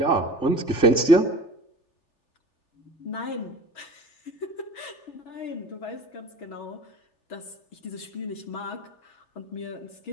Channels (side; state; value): right; late; 3.4 ms